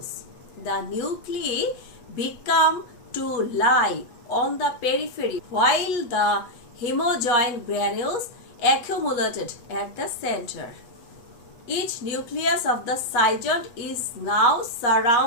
The nuclei become to lie on the periphery while the hemojoin granules accumulated at the center. Each nucleus of the zygote is now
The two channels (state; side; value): late; right; 8.2 ms